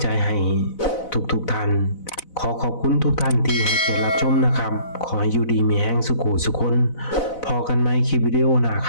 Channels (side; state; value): right; late; 4.0 ms